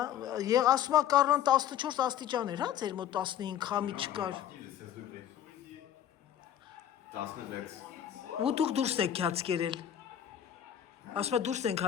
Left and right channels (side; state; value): right; quieter; 10.4 dB